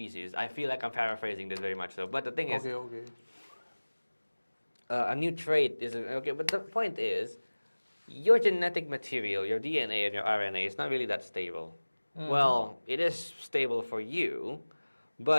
I feel like I'm paraphrasing this very much so, but the thing is, Okay. a new trait is okay. But the point is, your genetic material, your DNA and your RNA, is not really that stable. Well, it is stable for you,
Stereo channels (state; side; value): inverted; both; correlation -1.00